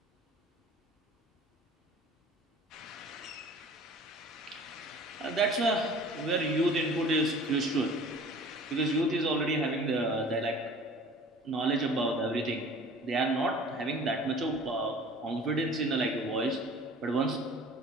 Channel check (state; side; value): normal; both; correlation 0.45